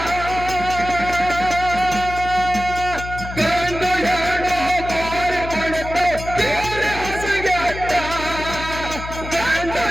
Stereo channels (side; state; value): left; noise; hum, 10 dB below the sound